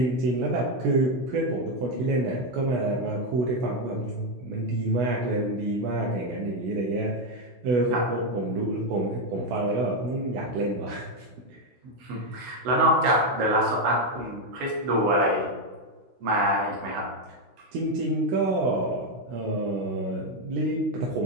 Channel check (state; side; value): late; left; 16 ms